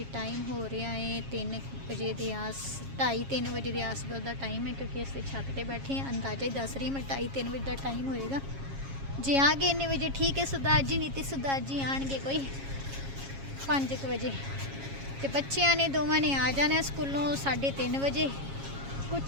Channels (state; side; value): late; left; 7.3 ms